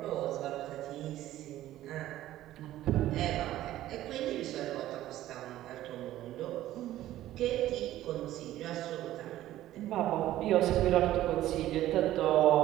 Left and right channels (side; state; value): left; quieter; 14.1 dB